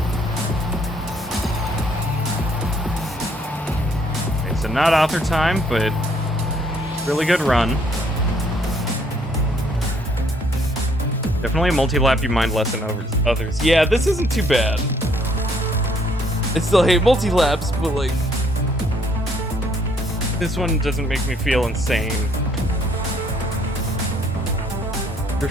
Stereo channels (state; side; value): normal; both; correlation 0.66